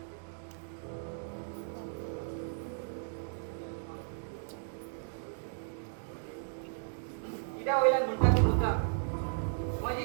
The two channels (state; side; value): silent; left; digital silence